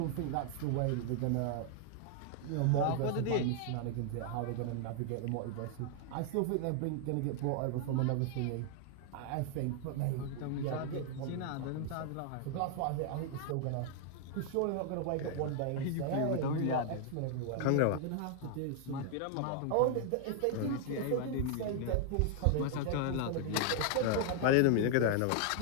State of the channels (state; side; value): different; both; correlation 0.00